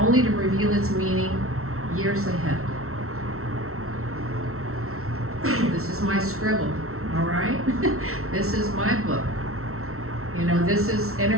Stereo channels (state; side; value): late; left; 0.63 ms